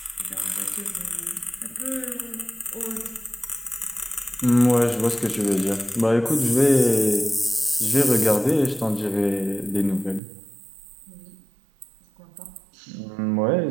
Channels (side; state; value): left; drops out; at 10.2 s